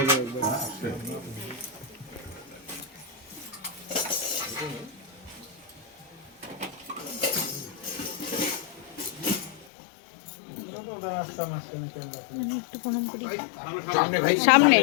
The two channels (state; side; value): drops out; right; at 9.7 s